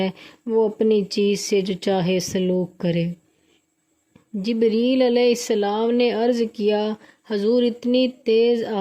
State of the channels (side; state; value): both; identical; correlation 1.00